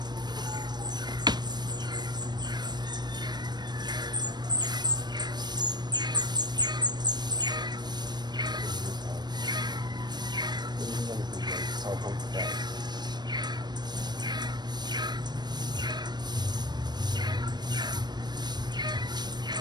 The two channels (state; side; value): late; left; 0.21 ms